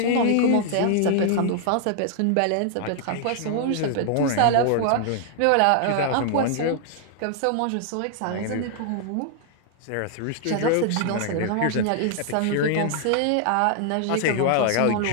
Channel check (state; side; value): different; both; correlation 0.00